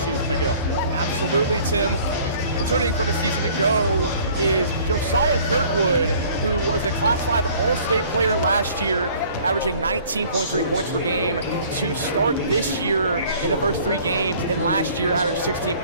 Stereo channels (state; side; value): inverted; both; correlation -0.53